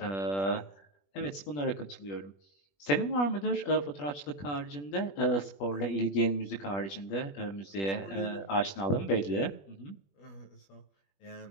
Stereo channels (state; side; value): late; right; 21 ms